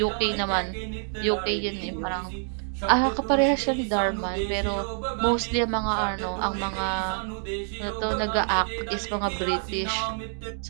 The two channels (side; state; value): left; silent; 60 dB below the other